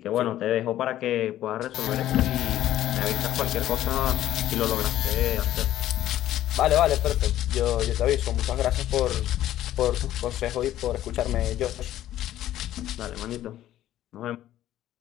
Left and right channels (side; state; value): right; quieter; 13.1 dB